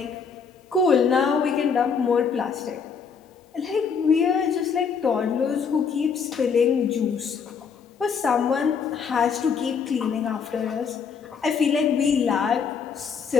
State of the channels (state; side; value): quieter; right; 6.1 dB